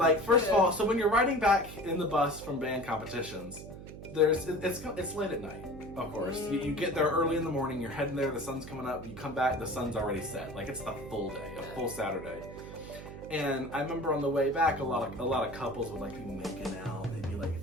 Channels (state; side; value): noise; right; hum, 13 dB below the sound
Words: first of all, so when you're riding back in the bus from band competitions, it's late at night. Of course, you get there early in the morning. You're heading there. The sun's coming up. You come back. The sun's already set. Like it's the full day, a full Saturday. And I remember on the way back, a lot of couples would like be making out. They'd be like